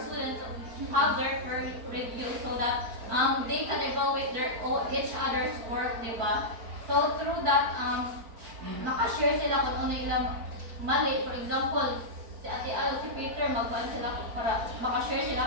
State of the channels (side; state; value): left; late; 4.5 ms